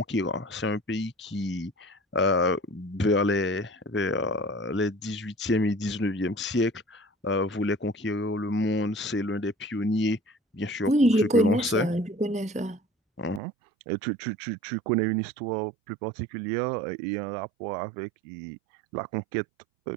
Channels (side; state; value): left; drops out; at 13.4 s